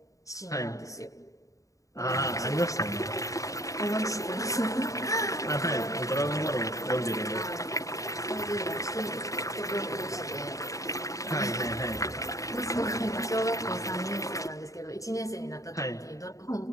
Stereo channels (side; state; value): right; late; 0.16 ms